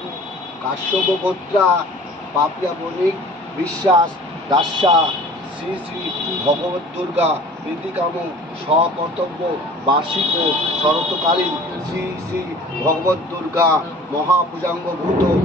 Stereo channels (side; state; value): both; normal; correlation 0.46